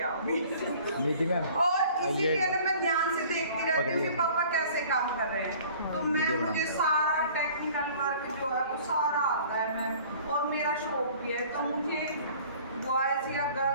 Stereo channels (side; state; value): both; inverted; correlation -0.50